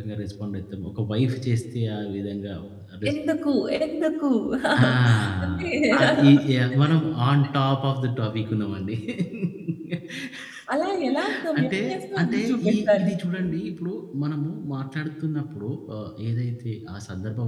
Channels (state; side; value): identical; both; correlation 1.00